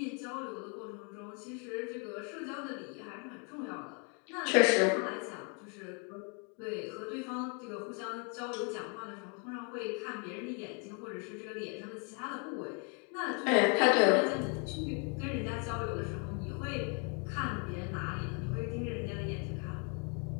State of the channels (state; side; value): quieter; right; 36.6 dB